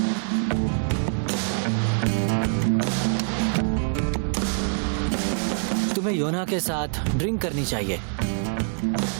तुम्हें योना के साथ ड्रिंक करनी चाहिए।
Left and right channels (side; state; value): left; silent; digital silence